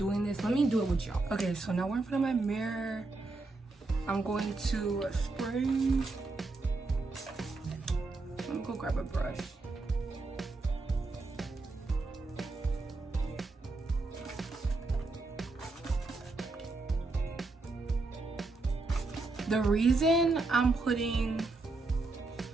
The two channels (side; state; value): left; quieter; 3.4 dB